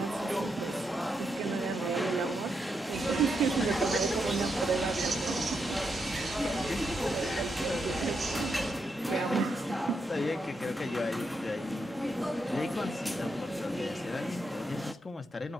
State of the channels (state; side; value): normal; both; correlation 0.82